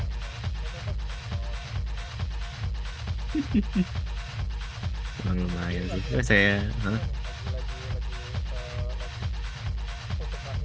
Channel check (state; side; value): identical; both; correlation 1.00